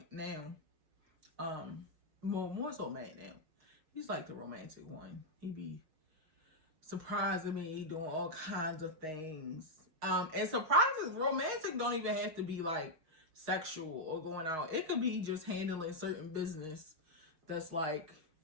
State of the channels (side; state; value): left; late; 6.4 ms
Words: now. More so Matt now. He's like the romantic one. He be surprising me, doing all kinds of things. And surprises, romantic don't even have to be like sexual or going out. It could be just handling certain business that's like,